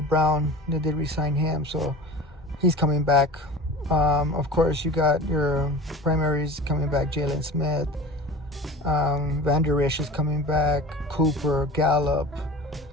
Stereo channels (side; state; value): both; normal; correlation 0.36